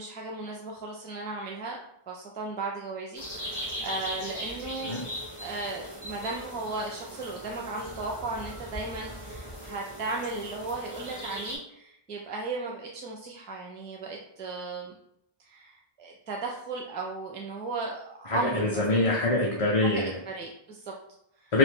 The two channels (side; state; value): right; late; 1.2 ms